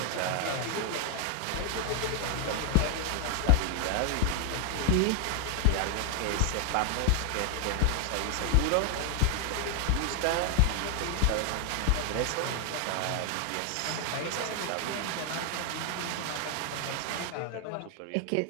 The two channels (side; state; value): both; different; correlation 0.00